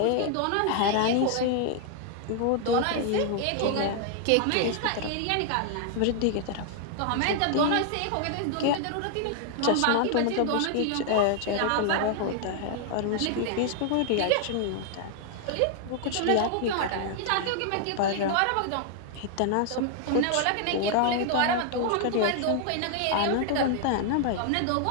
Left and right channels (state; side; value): different; both; correlation 0.00